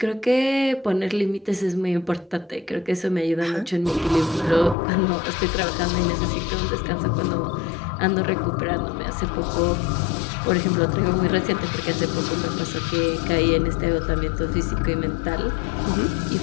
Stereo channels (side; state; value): right; drops out; at 4.8 s